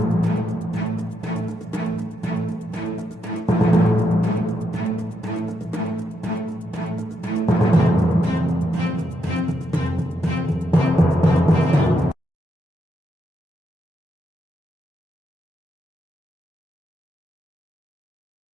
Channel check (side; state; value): both; normal; correlation 0.80